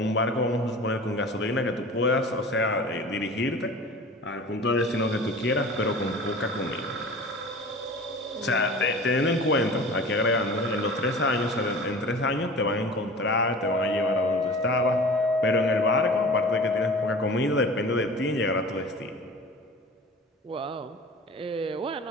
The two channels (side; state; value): both; normal; correlation 0.39